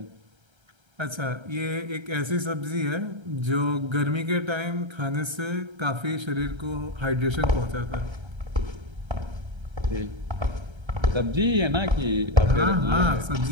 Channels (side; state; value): left; late; 1.3 ms